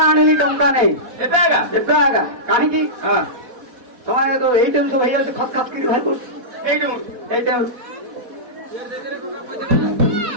ଆଣିଲି ଟଙ୍କା ନେଇ ଏବେ ଆଜ୍ଞା ଏବେ ଆଗା କାହିଁକି ହଁ ତମେ ତ ଏଇଠି ସବୁ ହେଇଯାଉଛି ଖତ ଖାତ କରି ଭାଇ କରୁଛୁ ଏଇଠୁ এইটা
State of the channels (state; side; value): late; left; 4.1 ms